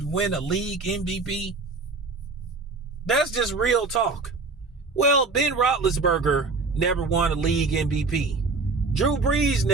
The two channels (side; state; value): left; quieter; 3.9 dB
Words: win a league MVP? That's just real talk. Well, Ben Roethlisberger never won a league MVP. Drew Brees